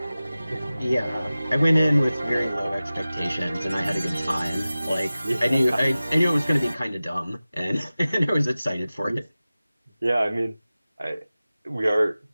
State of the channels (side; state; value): both; inverted; correlation -0.97